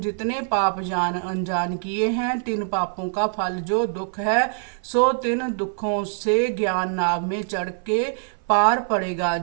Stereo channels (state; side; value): silent; left; 57 dB below the other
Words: जितने पाप जान अनजान किए हैं, तिन पापों का फल जो दुख है, सो तिन दुखों से ज्ञान नाव में चढ़ के पार पड़ेगा।